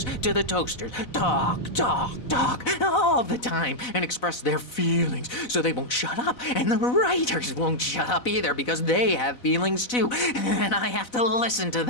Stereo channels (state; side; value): late; right; 4.0 ms